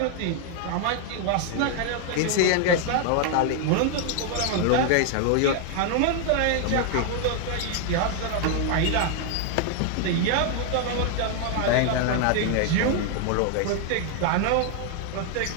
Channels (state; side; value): different; both; correlation 0.00